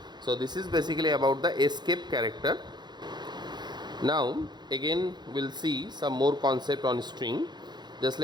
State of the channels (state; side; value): late; left; 0.21 ms